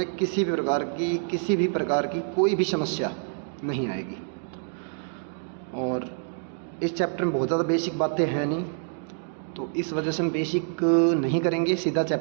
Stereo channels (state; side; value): silent; left; digital silence